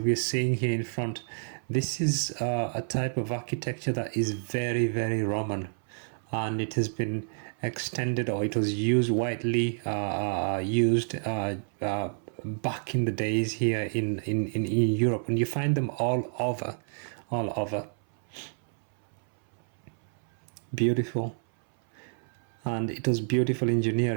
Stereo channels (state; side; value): silent; left; 59 dB below the other